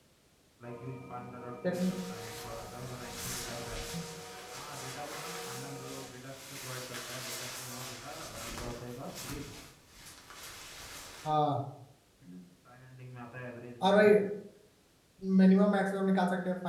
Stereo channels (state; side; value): identical; both; correlation 1.00